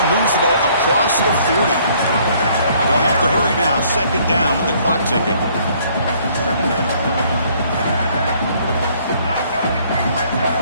moves the ball across the 40. They'll have to hurry now. Second down with the clock ticking.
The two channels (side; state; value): both; inverted; correlation -0.62